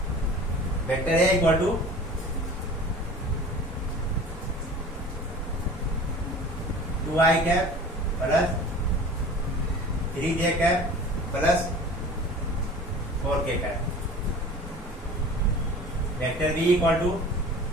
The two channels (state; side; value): normal; both; correlation 0.41